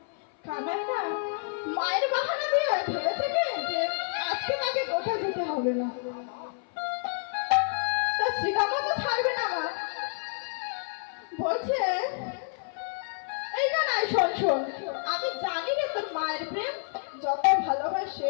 কানাই না মায়ের বাহানা দিয়ে ভেবেছে কি যে আজকে তাকে গোঠা যেতে হবে না, তা শ্রীরামও তো ছাড়বে না। মা বলছে, এই কানাই শোন শোন, আমি জানি রে তোর মায়ের প্রেম যত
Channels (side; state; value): right; silent; 56 dB below the other